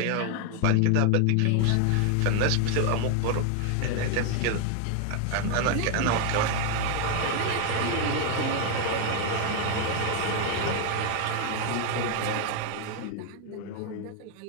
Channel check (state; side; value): different; both; correlation 0.01